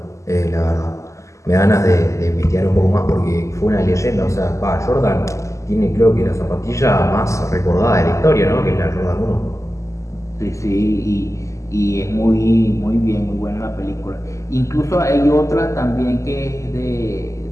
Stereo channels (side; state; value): right; late; 0.15 ms